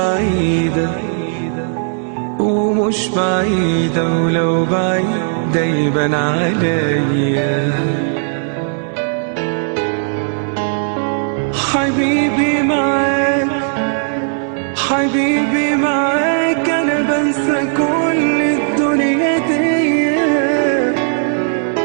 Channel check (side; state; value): left; silent; 69 dB below the other